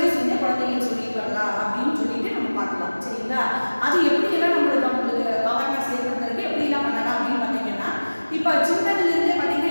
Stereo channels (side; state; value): both; inverted; correlation -1.00